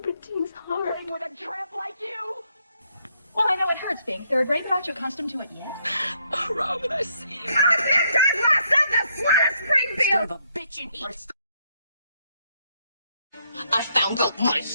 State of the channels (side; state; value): both; inverted; correlation -0.73